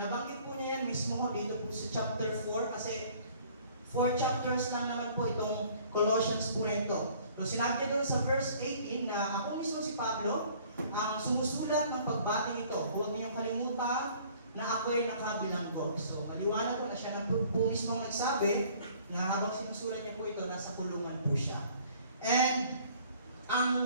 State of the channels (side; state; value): both; inverted; correlation -0.55